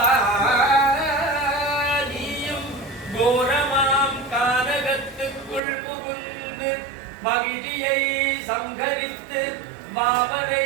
நீயும் கோரமாம் கானகத்துக்குள் புகுந்து மகிழியை சங்கரித்து மாவரை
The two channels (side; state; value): left; drops out; at 5.6 s